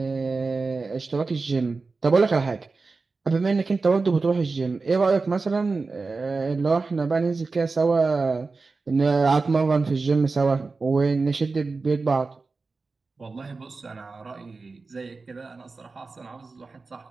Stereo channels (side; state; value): left; quieter; 4.0 dB